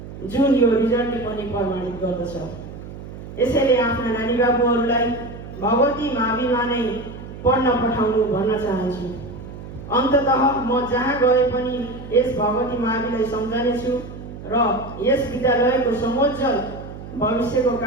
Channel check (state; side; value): noise; right; hum, 13 dB below the sound